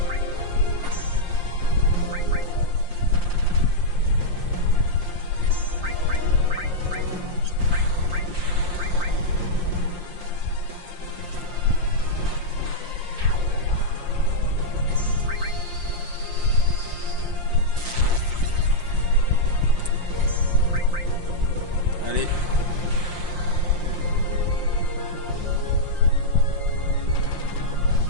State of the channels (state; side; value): late; left; 5.7 ms